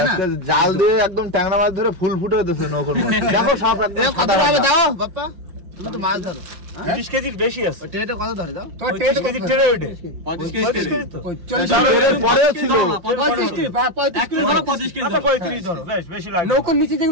না জাল দিয়ে একদম ট্যাংরা মাছ ধরে ফুল ফুটে দিতেছে নৌকোর মধ্যে দেখো সাপ এ কত হবে দাও বাপ্পা তুমি তো মাছ ধরো 20 কেজির বেশি আছে ওই ট্রেটা কত ধরে দাও 30 কেজি ট্রে ওইটে 35 কেজি তো পরে ছিল 35 কেজি 35 কেজি আচ্ছা 35 ধরো বেশ বেশি লাগে নৌকার নিচে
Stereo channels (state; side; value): late; left; 5.7 ms